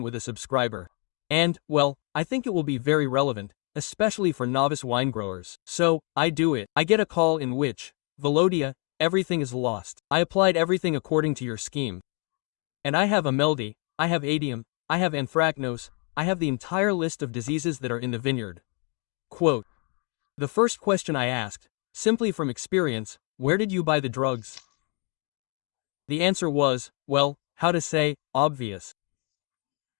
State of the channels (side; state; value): right; quieter; 36.4 dB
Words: with a subscriber. And, well, I think it will be very relevant, especially for novice wine growers. So, I do it. I get a call in which, Velodia, everything is lost. I applied everything according to your scheme. And I have ameldy, I have adium, I have anthracnose, I have the entire list of diseases that are in the vineyard. Quote. The first question I asked, simply from experience, where did you buy the drugs? The answer was, well, how to say, obvious.